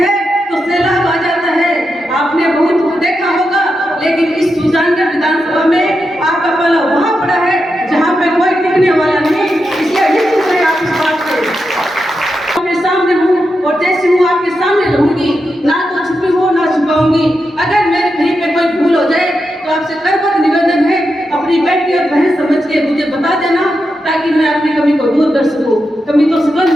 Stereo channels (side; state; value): both; normal; correlation 0.87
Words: तो सैलाब आ जाता है। आपने बहुत देखा होगा, लेकिन इस सुजानगढ़ विधानसभा में आपका पाला वहां पड़ा है जहां पे कोई टिकने वाला नहीं, इसलिए निश्चित है आप इस बात से मैं सामने हूँ और जैसे हूँ आपके सामने रहूंगी, ना तो छुपी हो ना छुपाऊंगी। अगर मेरे कहीं पे कोई भूल हो जाए तो आपसे करबद्ध निवेदन है, अपनी बेटी और बहन समझ के मुझे बता देना, ताकि मैं अपनी कमी को दूर कर सकूं। कमी तो सुगंध